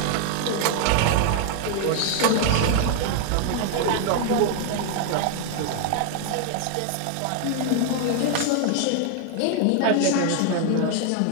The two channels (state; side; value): different; both; correlation 0.00